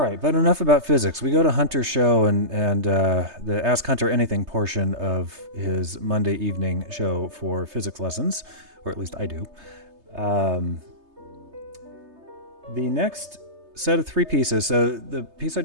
but enough about physics. We go to Hunter's show and the Ask Hunter Anything portion of his Monday evening show for physics lessons, or at least I do. The next set of 3 pieces, so the piece I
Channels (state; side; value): late; left; 3.3 ms